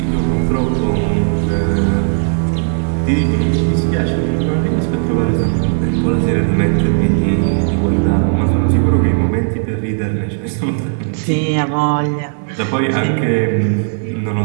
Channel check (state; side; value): silent; left; digital silence